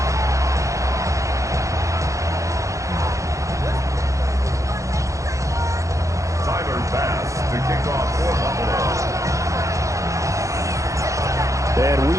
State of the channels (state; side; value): late; left; 0.15 ms